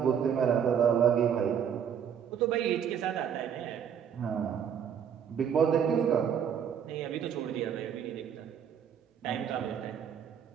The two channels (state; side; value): quieter; left; 8.2 dB